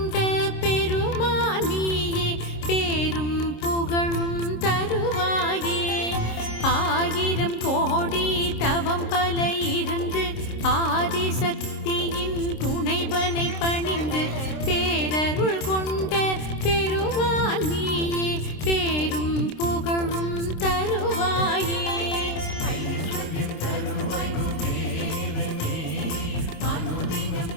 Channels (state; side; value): late; right; 26 ms